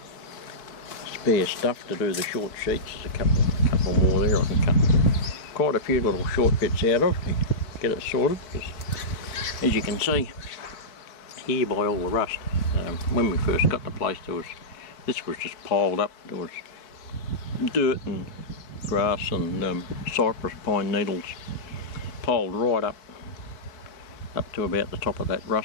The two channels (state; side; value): late; right; 4.6 ms